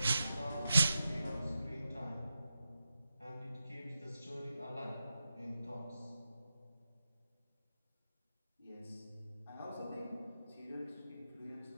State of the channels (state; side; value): inverted; both; correlation -0.90